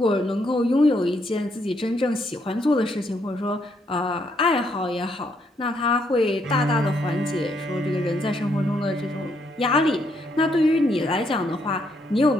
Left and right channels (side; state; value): both; normal; correlation 0.74